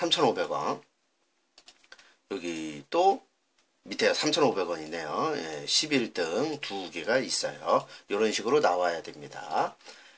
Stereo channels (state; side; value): identical; both; correlation 1.00